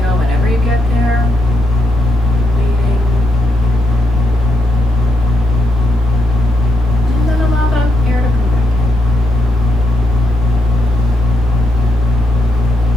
whenever you get there, waiting. And then allow the air to come back in.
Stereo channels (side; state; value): both; normal; correlation 0.80